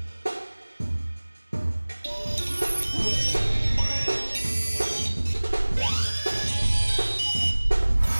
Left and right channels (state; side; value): inverted; both; correlation -1.00